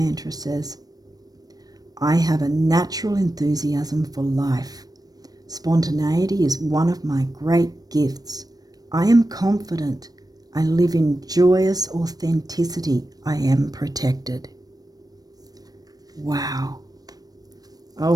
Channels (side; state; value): left; late; 0.19 ms